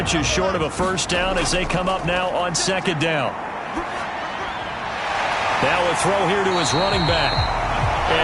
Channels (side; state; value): both; identical; correlation 1.00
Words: short of a first down as they come up now on second down. Now a throw here to his running back.